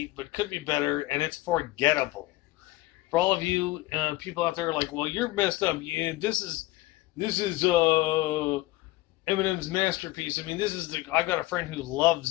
but could be better, and it's forgettable. For all of you people out there like, well, you're messed up. Yeah, this is Eminem's masterpiece. I mean, I got a friend who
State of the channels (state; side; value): quieter; right; 18.6 dB